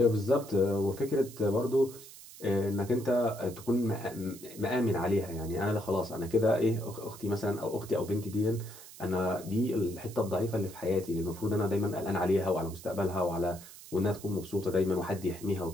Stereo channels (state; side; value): noise; right; hiss, 17 dB below the sound